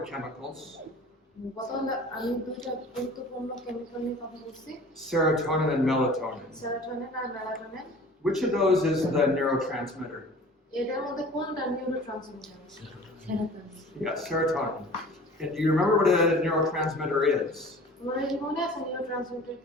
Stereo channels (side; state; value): both; normal; correlation 0.44